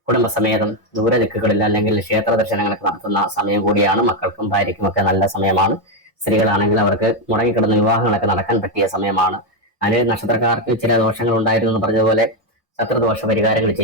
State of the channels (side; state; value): both; normal; correlation 0.06